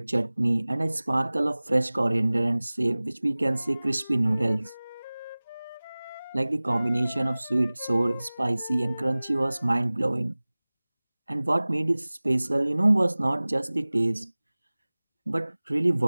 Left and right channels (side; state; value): both; inverted; correlation -1.00